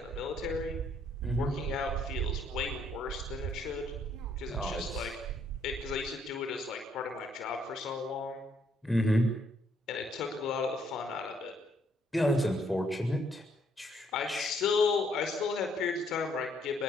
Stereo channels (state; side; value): normal; both; correlation 0.69